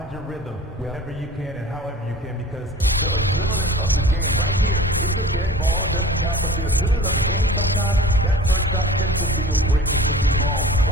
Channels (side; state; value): both; normal; correlation 0.41